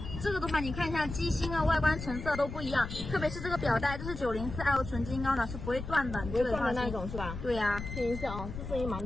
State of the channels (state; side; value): noise; left; rumble, 8 dB below the sound